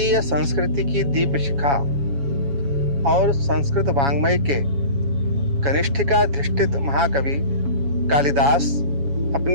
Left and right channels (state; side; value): late; left; 7.2 ms